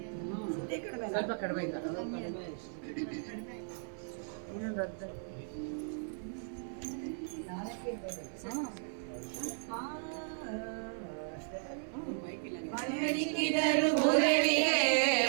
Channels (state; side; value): silent; left; 54 dB below the other